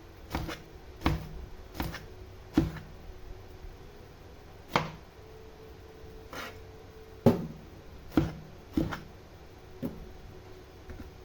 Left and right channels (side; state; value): both; identical; correlation 1.00